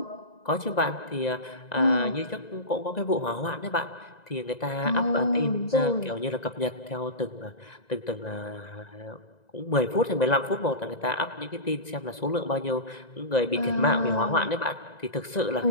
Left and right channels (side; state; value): right; late; 1.9 ms